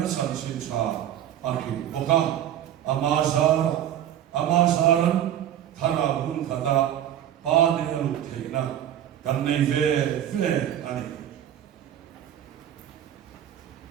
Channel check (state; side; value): quieter; left; 11.1 dB